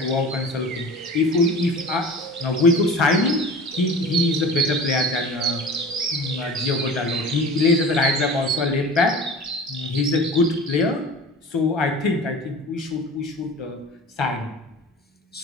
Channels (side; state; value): both; normal; correlation 0.38